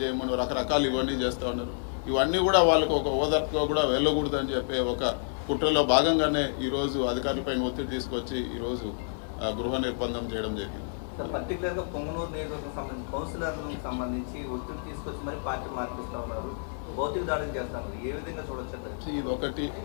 చేయమనో రకరకాలు ఇవన్నీ చేస్తూ ఉన్నారు. ఇవన్నీ కూడా వాళ్ళకు ఒక ఓదార్పుగా కూడా వెళ్ళకూడదని చెప్పే ఒక కుట్రలో భాగంగానే ఈరోజు అధికారులపైన ఒత్తిడి తీసుకొచ్చి ఈరోజు గృహ నిర్బంధం చేయడం జరిగింది. పర్టికులర్గా పొంగనూరు నియోజకవర్గం సంబంధించి కౌన్సిలర్లకు సంబంధించి ఒత్తిడి తీసుకొచ్చి మరి పార్టీ మార్పిస్తూ ఉన్నారు, భౌతిక దాడులు చేస్తున్నారు. ఏ విధంగా చూడొచ్చు? ఇది ఒకటి,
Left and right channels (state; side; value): silent; right; 58 dB below the other